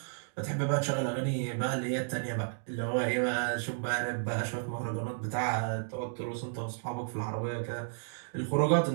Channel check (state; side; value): silent; left; digital silence